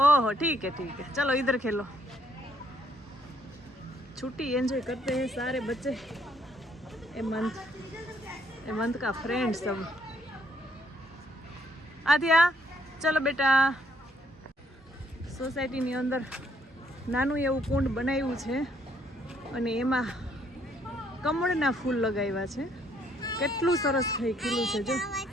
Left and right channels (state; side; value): normal; both; correlation 0.68